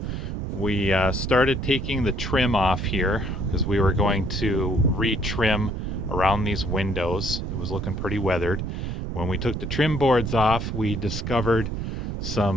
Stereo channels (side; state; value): right; noise; rumble, 3 dB below the sound